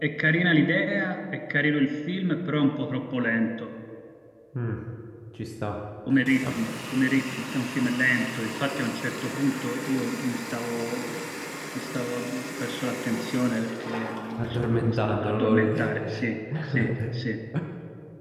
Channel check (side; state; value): both; identical; correlation 1.00